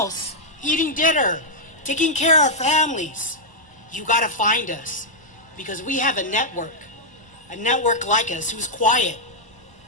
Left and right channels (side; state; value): left; late; 1.0 ms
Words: eating dinner, taking care of families. You got to find us, because we have a network like us who's quiet